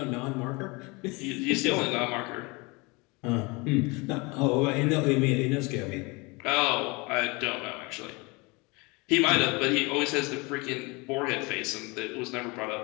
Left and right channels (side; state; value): right; quieter; 26.7 dB